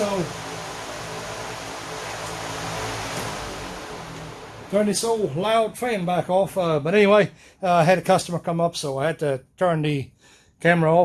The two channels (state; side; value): identical; both; correlation 1.00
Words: turn this old loud fan back off. But anyway, I had a customer come up, so I had to turn the camera